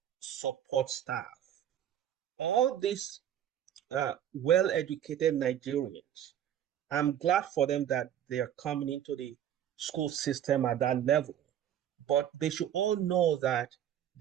support staff. All these well-educated Nigerians, I'm glad for them that they are coming into the school system at that level. But they should all know that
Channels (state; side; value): quieter; left; 10.5 dB